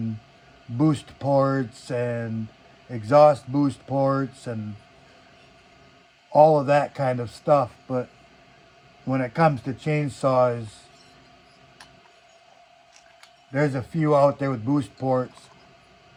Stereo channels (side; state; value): both; identical; correlation 1.00